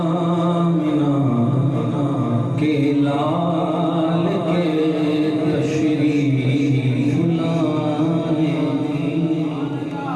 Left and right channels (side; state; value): both; identical; correlation 1.00